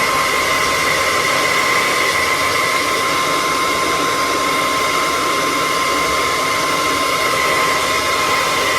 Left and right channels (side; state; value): both; identical; correlation 1.00